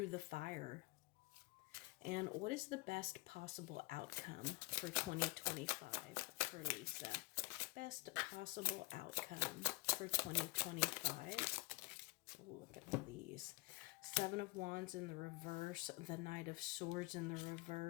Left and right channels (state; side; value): quieter; right; 23.0 dB